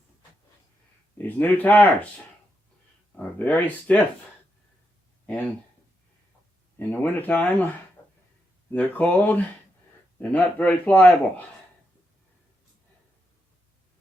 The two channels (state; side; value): normal; both; correlation 0.83